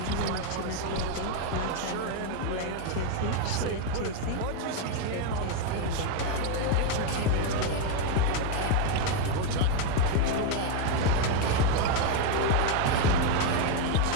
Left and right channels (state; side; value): different; both; correlation 0.01